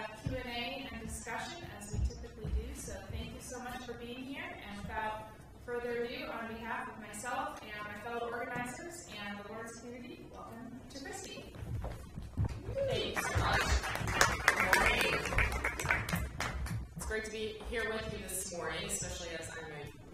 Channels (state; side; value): identical; both; correlation 1.00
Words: Q&A and discussion, as we typically do. So thank you so much for being here. And without further ado, on behalf of myself and my fellow organizers and the Lawrence community, welcome to Christy. Thank you so much. Good morning. It's great to be here with you this morning, especially as I'm a